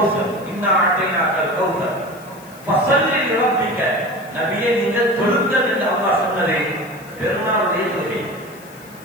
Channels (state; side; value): noise; left; hiss, 23 dB below the sound